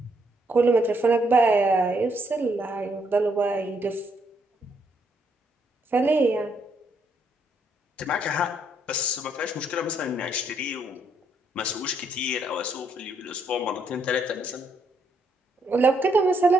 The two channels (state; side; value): normal; both; correlation 0.73